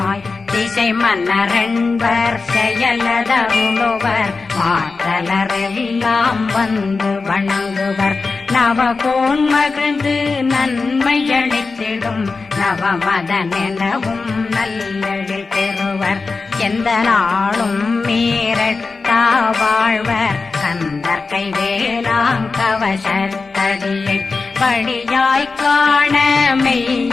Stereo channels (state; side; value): quieter; right; 4.2 dB